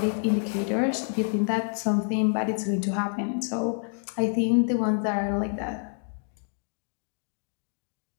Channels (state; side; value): silent; right; 59 dB below the other